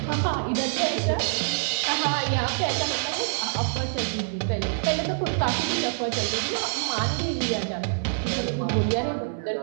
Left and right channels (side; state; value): left; silent; digital silence